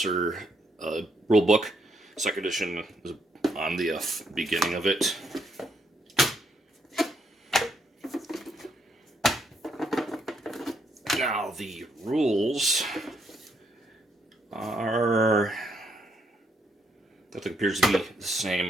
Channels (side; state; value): both; normal; correlation 0.75